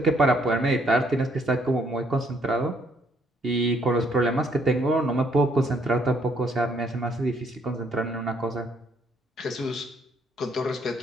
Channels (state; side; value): normal; both; correlation 0.68